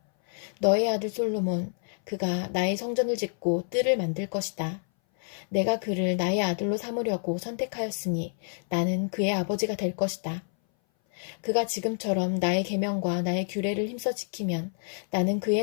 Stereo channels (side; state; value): right; silent; 58 dB below the other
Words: 너의 아들 솔로몬, 그가 나의 성전을 짓고 뜰을 만들 것이다. 내가 그를 나의 아들로 삼으려고 선택하였으니 나는 그의 아버지가 될 것이다. 그가 지금처럼 나의 계명과 나의 규례를 힘써 지키면 나는 그의